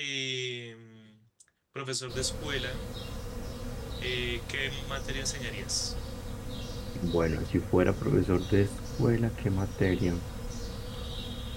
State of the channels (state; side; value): identical; both; correlation 1.00